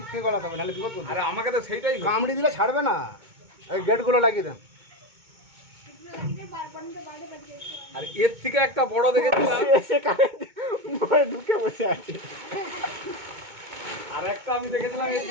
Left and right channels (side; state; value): left; late; 2.2 ms